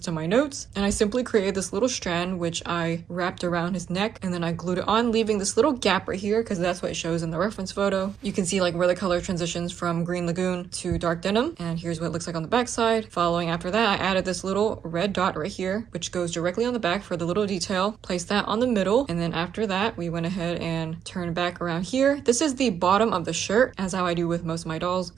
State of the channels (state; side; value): quieter; left; 8.3 dB